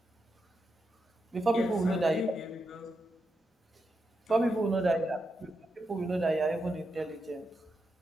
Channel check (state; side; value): normal; both; correlation 0.85